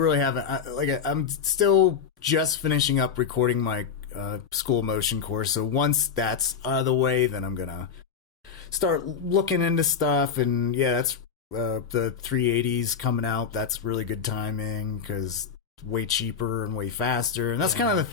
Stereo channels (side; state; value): right; quieter; 6.7 dB